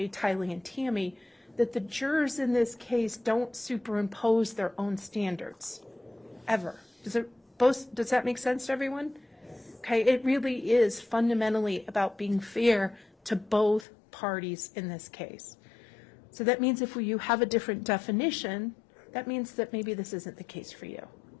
Tylee, and Tammy, that the jurors in this case don't superimpose their own standards, ever. Does that make sense to everyone? Okay, it really is fundamentally about being fair to both parties in this case. So that means if you have a different definition, that means that maybe this isn't the case for you.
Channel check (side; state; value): right; drops out; at 13.9 s